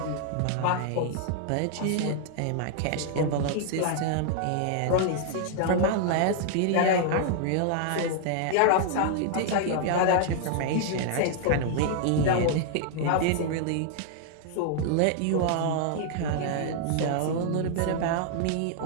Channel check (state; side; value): different; both; correlation -0.01